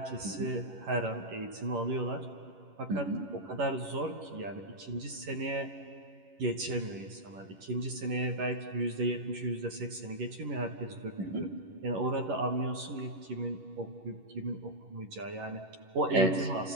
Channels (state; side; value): late; left; 11 ms